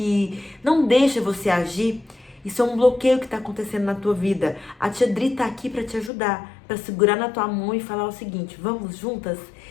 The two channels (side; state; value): right; drops out; at 6.1 s